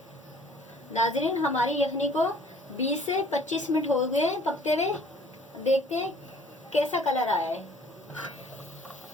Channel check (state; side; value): normal; both; correlation 0.54